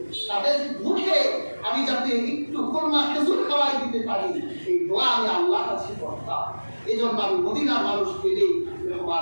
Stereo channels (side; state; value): both; inverted; correlation -1.00